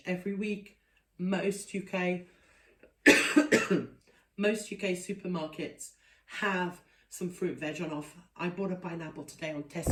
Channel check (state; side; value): identical; both; correlation 1.00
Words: every week. Most UK supermarkets have some fruit veg on offer. I bought a pineapple today on